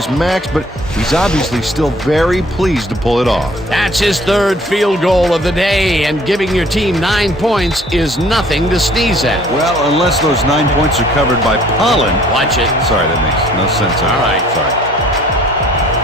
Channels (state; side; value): normal; both; correlation 0.56